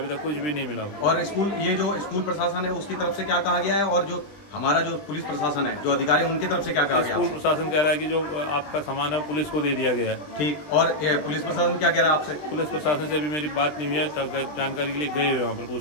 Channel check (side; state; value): right; late; 20 ms